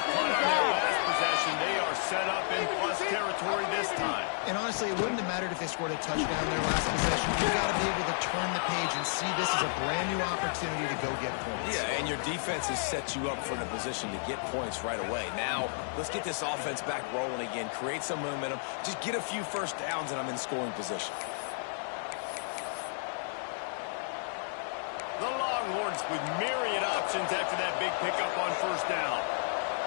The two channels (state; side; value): silent; right; digital silence